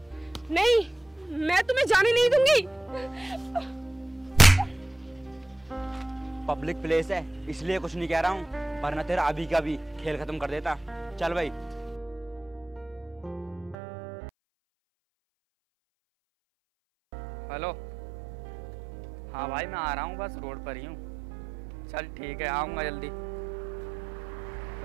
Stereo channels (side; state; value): left; drops out; at 13.8 s